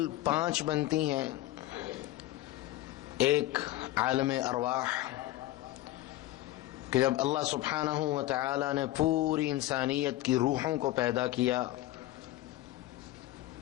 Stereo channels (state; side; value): quieter; right; 16.0 dB